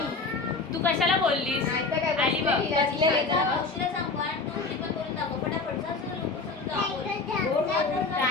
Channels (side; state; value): right; quieter; 4.0 dB